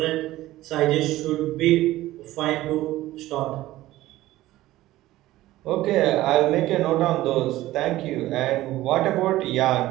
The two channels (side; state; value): left; quieter; 16.1 dB